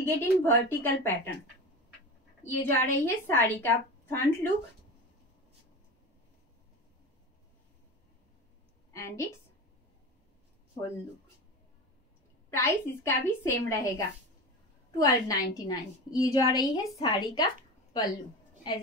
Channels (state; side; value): normal; both; correlation 0.28